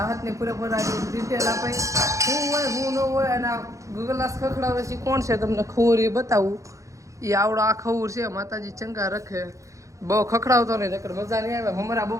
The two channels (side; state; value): left; late; 0.15 ms